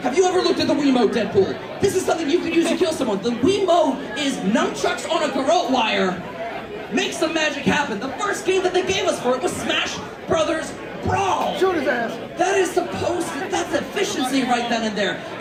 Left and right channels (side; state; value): both; identical; correlation 1.00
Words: Have you ever looked at the Wiimote, Deadpool? This is something you could use to kill someone. The Wiimote is nunchucks on a garrote wire. Make some magic happen. The first game that they gave us for it was Smash Brothers Brawl. Shoot his ass. That is supposed to, that's efficiency right then and there.